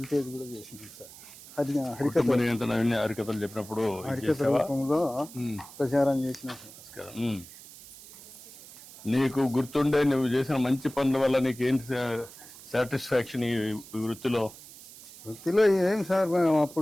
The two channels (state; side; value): noise; right; hiss, 18 dB below the sound